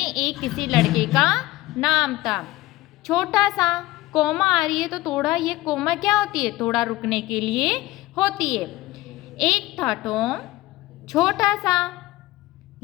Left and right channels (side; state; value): right; quieter; 18.6 dB